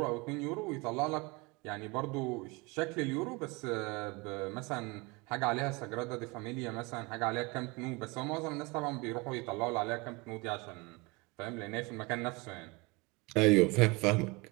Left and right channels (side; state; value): left; quieter; 25.6 dB